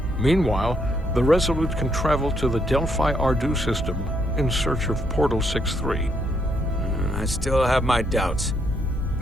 Meanwhile, the Resolute can travel to the Delphi Ardu system in search of Portal 6-3. I still have my doubts.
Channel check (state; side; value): normal; both; correlation 0.74